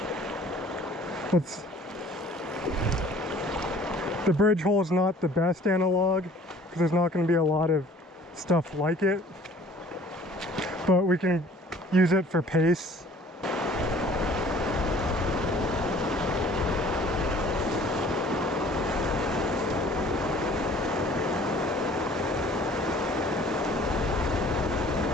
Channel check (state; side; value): normal; both; correlation 0.52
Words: The bridge hole is not the best analog because there's not going to be a lot of stuff like it, but we can use it for pace.